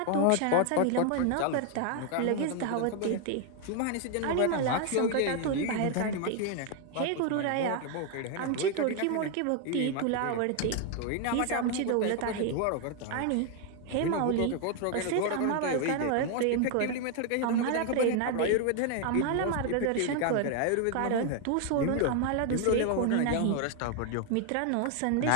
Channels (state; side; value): different; both; correlation 0.01